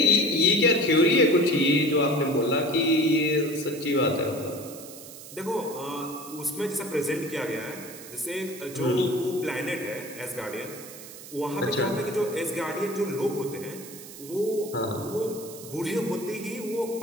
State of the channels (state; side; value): noise; right; hiss, 15 dB below the sound